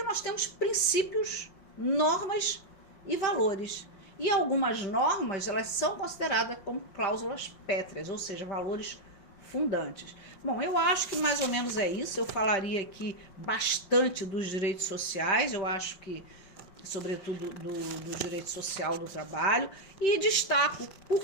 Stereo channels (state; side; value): late; right; 5.6 ms